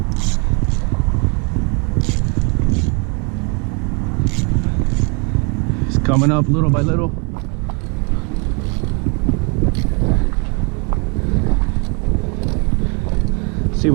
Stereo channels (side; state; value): left; quieter; 34.9 dB